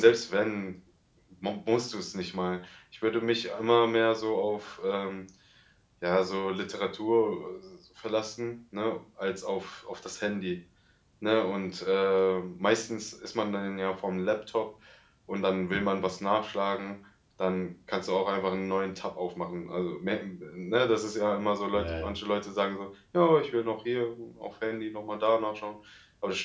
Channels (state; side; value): identical; both; correlation 1.00